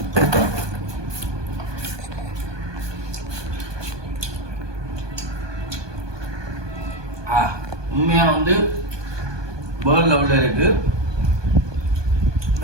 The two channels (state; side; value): late; left; 1.2 ms